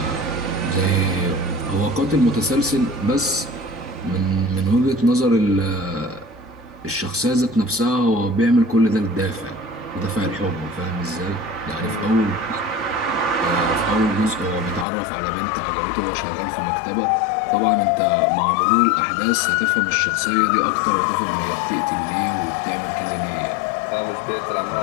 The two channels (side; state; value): right; drops out; at 14.9 s